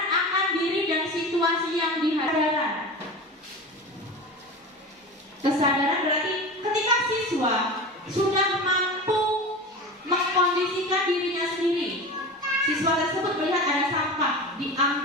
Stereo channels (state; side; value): normal; both; correlation 0.30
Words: akan diri dan situasi yang dihadapi. Kesadaran berarti ketika siswa sudah mampu mengkondisikan dirinya sendiri, siswa tersebut melihat ada sampah,